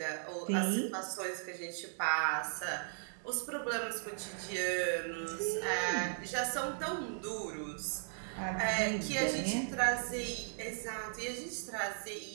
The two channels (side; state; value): left; silent; digital silence